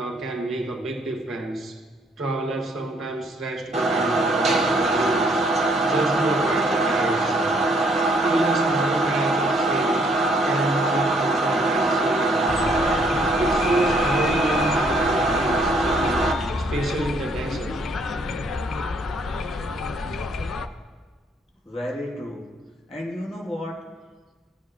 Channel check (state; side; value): normal; both; correlation 0.66